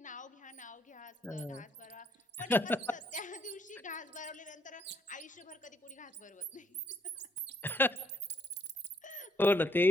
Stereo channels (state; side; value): normal; both; correlation 0.71